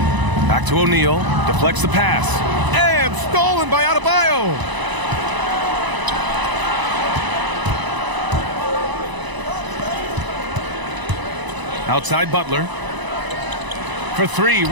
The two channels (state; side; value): late; left; 1.0 ms